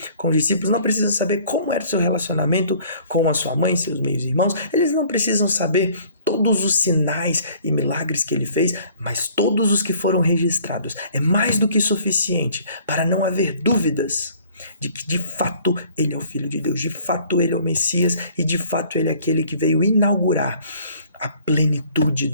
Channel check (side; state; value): both; inverted; correlation -0.55